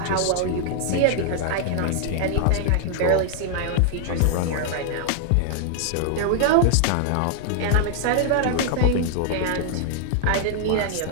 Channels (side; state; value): both; different; correlation 0.00